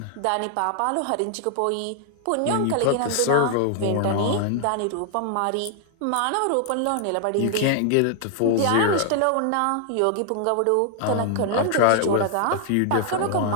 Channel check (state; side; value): different; both; correlation 0.00